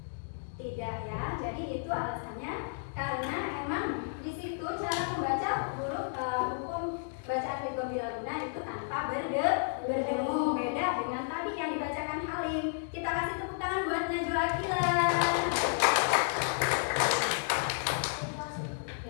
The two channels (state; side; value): silent; right; digital silence